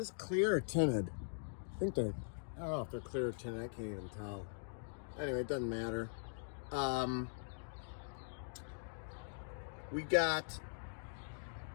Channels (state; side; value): silent; right; digital silence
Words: clear or tinted? I think they're, I don't know if they're clear or tinted. I can't even tell. Anyway, it doesn't matter. We got